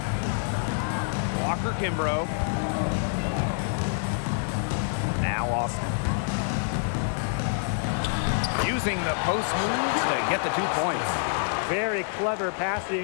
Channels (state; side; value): silent; right; digital silence